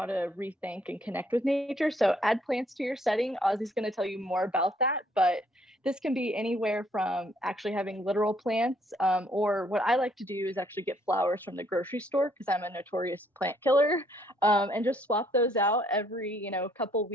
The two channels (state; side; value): normal; both; correlation 0.66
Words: to rethink and connect with nature. So add plants to your setting. Ozzy's going to tell you more about that, but this can be anywhere from actually having literal plants, or what I like to do is actually get flowers from the grocery store because I'm a notorious plant killer, and just swap those out every couple